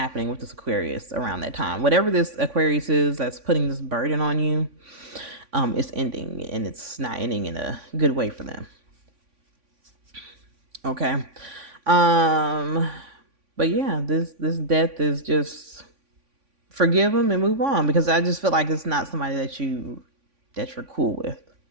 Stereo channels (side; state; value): left; late; 3.5 ms